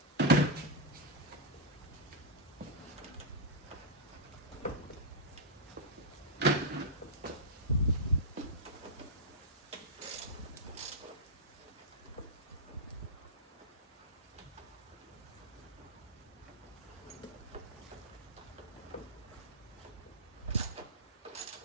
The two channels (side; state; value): both; normal; correlation -0.06